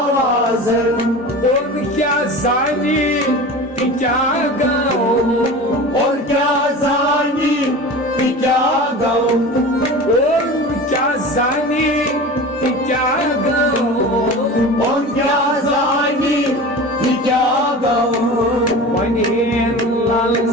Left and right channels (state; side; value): normal; both; correlation 0.34